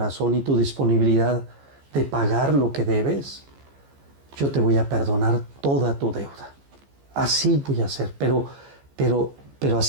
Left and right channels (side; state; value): left; late; 14 ms